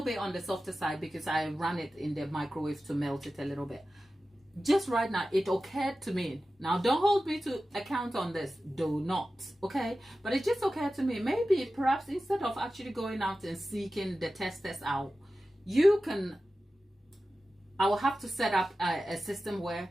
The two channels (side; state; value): both; normal; correlation 0.94